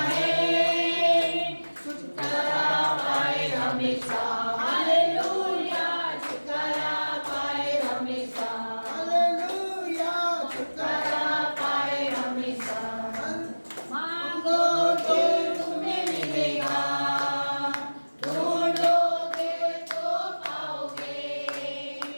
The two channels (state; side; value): inverted; both; correlation -1.00